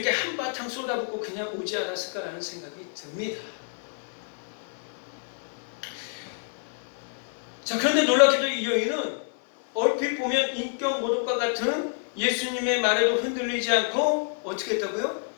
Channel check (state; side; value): silent; right; 60 dB below the other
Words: 한바탕 쏟아붓고 그냥 오지 않았을까라는 생각이 듭니다. 자, 그런데 놀랍게도 이 여인은 얼핏 보면 인격 모독과 같은 예수님의 말에도 흔들리지 않고 어떻게 했다고요?